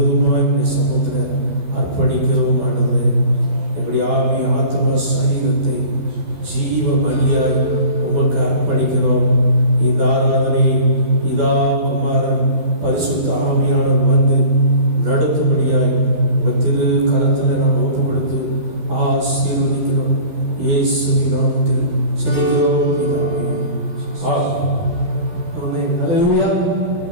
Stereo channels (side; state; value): left; late; 12 ms